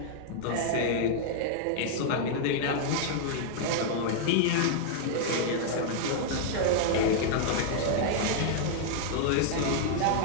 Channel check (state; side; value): different; both; correlation -0.01